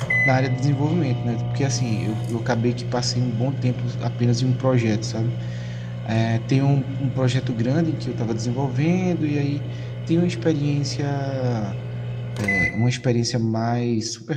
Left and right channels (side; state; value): both; identical; correlation 1.00